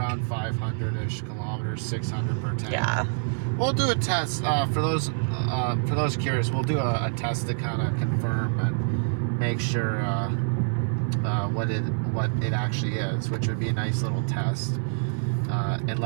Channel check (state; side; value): silent; left; 61 dB below the other